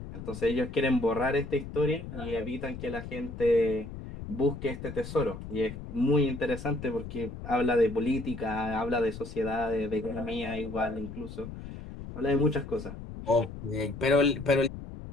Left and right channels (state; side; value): noise; left; rumble, 11 dB below the sound